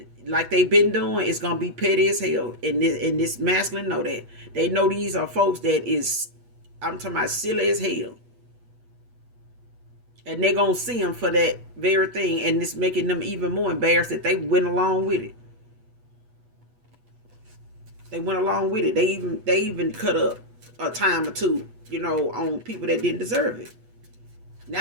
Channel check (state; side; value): late; left; 8.2 ms